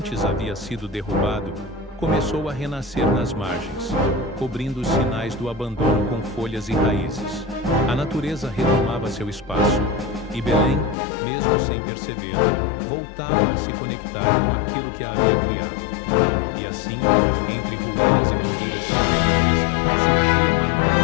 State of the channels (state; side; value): drops out; right; at 11.0 s